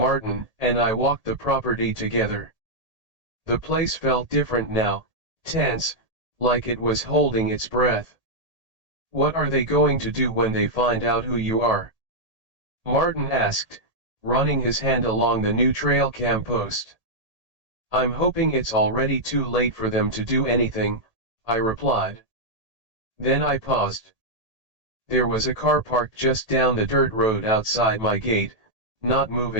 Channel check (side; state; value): left; late; 1.8 ms